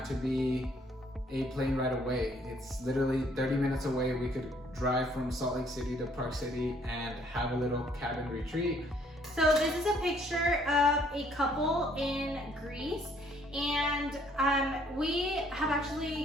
to be a plane ride away. It's literally 30 minutes away. We could drive from Salt Lake City to Park City and have a little cabin retreat. So this is a picture of a couple in Greece, And we have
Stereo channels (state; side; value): normal; both; correlation 0.64